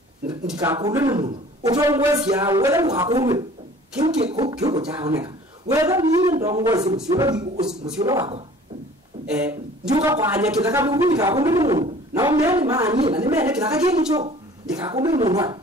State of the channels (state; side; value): normal; both; correlation 0.49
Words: ndikakudwe ni mungu utongwesia wethe mukakudwe kiuko chaoneka wethe ni ndongozi musiola wako njuka kwanya kitaka mungu ndikakudwe ni mungu na omeni maani na nimene kitaka kincho ndikakudwe ni mungu